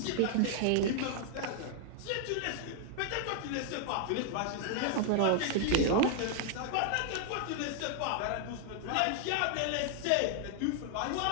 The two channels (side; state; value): both; different; correlation 0.00